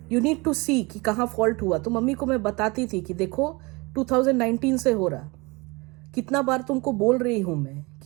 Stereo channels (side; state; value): left; quieter; 25.8 dB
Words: You need to see कि कहाँ फॉल्ट हुआ. तो मम्मी को मैं बताती थी कि देखो 2019 से हो रहा, कितना बार तुमको बोल रही हूँ मैं